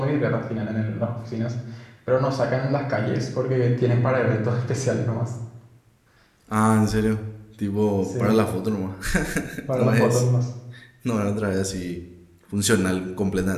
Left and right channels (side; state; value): both; identical; correlation 1.00